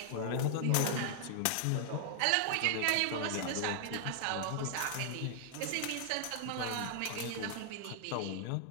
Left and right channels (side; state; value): both; different; correlation -0.01